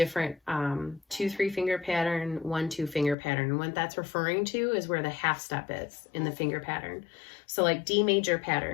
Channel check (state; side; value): drops out; right; at 3.2 s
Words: 2-3 finger pattern, 1-2 finger pattern. And what that's referring to is where the half step is in the finger pattern. So like D major